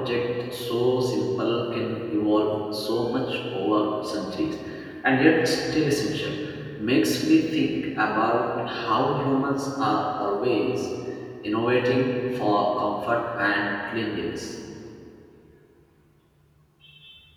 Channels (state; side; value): identical; both; correlation 1.00